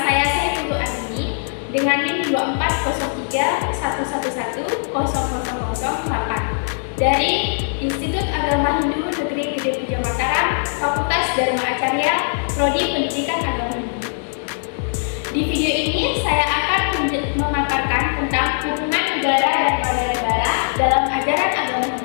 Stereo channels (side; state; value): right; silent; 63 dB below the other